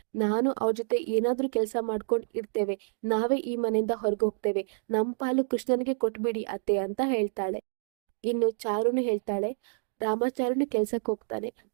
ನಾನು ಅವ್ರ ಜೊತೆ ಏನಾದ್ರೂ ಕೆಲಸ ಮಾಡ್ಕೊಂಡು ಇರ್ತೇವೆ, ನಾವೇ ಈ ಮನೆಯಿಂದ ಹೊರಗೆ ಹೋಗ್ತೇವೆ, ನಮ್ ಪಾಲು ಕೃಷ್ಣನಿಗೆ ಕೊಟ್ಬಿಡಿ ಅತ್ತೆ ಅಂತ ಹೇಳ್ತಾಳೆ. ಇನ್ನು ಚಾರುನು ಹೇಳ್ತಾಳೆ, ರಾಮಾಚಾರುನು ಕೆಲ್ಸಕ್ಕೆ ಹೋಗ್ತಾನೆ,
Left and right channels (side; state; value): left; silent; digital silence